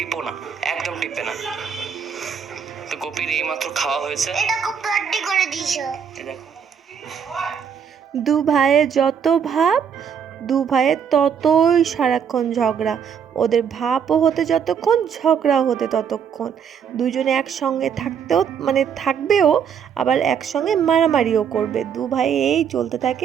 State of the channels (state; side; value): quieter; left; 7.5 dB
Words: না, একদম টিপবে না। তো গোপীর এইমাত্র খাওয়া হয়েছে, এটা খুব পার্টি করে দিয়েছো। দেখো দু ভাইয়ের যত ভাব, দু ভাইয়ের ততই সারাক্ষণ ঝগড়া। ওদের ভাবও হতে যতক্ষণ, ঝগড়াও হতে ততক্ষণ। দুজনে একসঙ্গে থাকতেও মানে থাকবেও, আবার একসঙ্গে মারামারিও করবে। দু ভাই এই চলতে থাকে